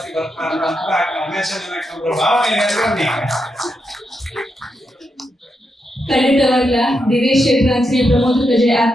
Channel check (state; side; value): normal; both; correlation 0.84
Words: ಬರ್ತಾ ಭಾವನೆ ಖಂಡಿತವಾಗ್ಲ ದಿನೇಶ್ ಶೆಟ್ಟರ್ ಅಂಚನೆ ಪ್ರಮೋದ್ ಕಜೆ